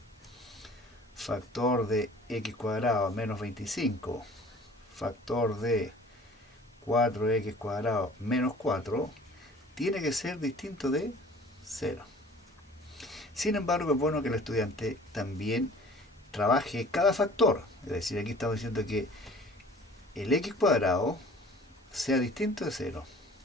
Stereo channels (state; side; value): normal; both; correlation 0.48